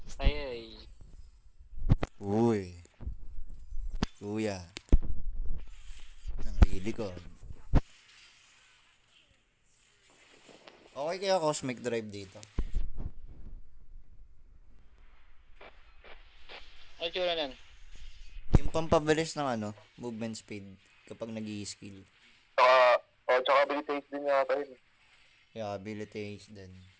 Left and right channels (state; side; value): identical; both; correlation 1.00